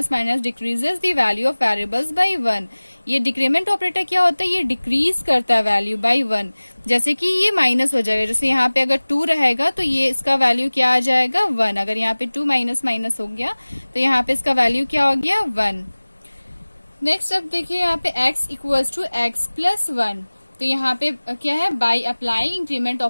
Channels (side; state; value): both; inverted; correlation -1.00